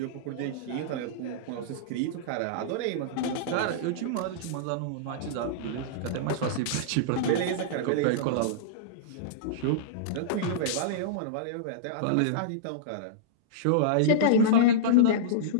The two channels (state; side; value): different; both; correlation -0.04